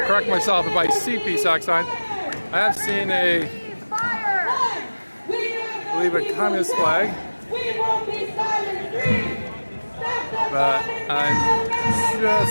correct myself if I see PSAC sign. I have seen I believe a communist flag, but I'm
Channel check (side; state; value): both; inverted; correlation -1.00